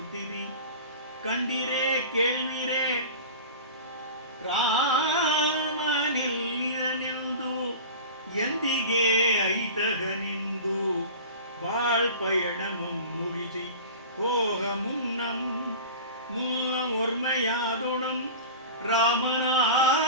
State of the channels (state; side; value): inverted; both; correlation -0.34